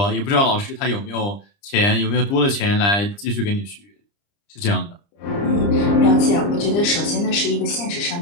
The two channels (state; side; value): late; right; 30 ms